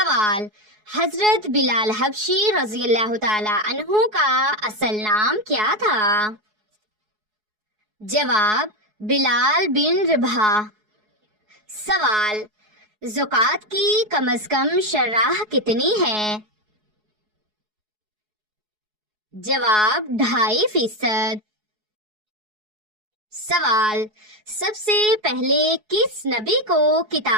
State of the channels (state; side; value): late; left; 4.7 ms